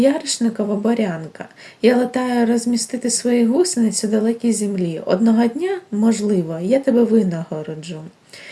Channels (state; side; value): identical; both; correlation 1.00